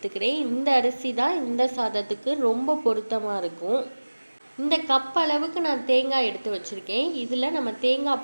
இந்த அரிசி தான் இந்த சாதத்துக்கு ரொம்ப பொருத்தமாக இருக்கும். இந்த கப் அளவுக்கு நான் தேங்காய் எடுத்து வச்சுருக்கேன். இதில் நம்ம தேங்காய்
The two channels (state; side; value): inverted; both; correlation -1.00